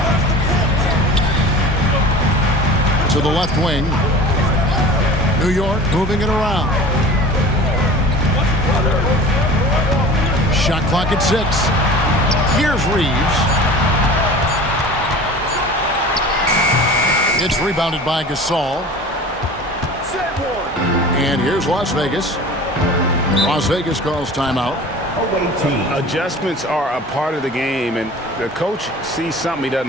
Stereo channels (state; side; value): normal; both; correlation 0.40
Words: To the left wing. New York moving it around. Shot clock at 6. Here's Reeves. It's rebounded by Gasol. And here's Las Vegas. Las Vegas calls timeout. Away team. Adjustments are a part of the game, and the coach sees something he